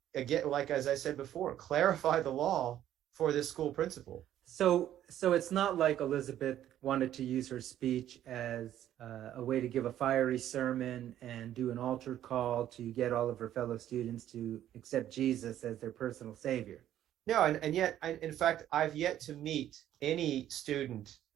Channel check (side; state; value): left; quieter; 11.8 dB